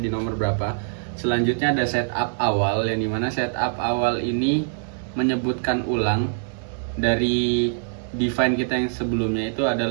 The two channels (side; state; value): left; silent; 63 dB below the other